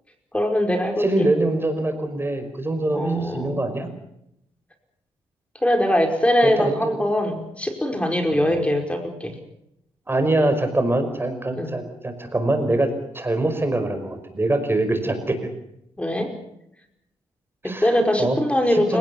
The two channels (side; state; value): both; normal; correlation 0.87